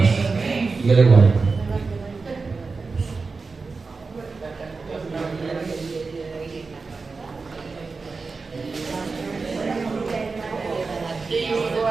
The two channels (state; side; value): quieter; left; 4.3 dB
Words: Y Dios le guarde.